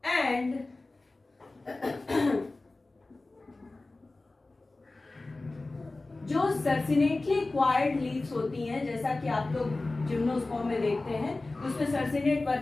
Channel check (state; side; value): quieter; right; 3.2 dB